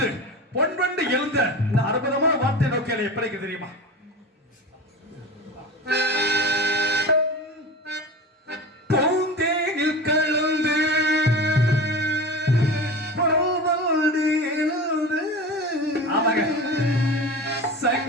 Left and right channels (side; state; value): both; normal; correlation 0.31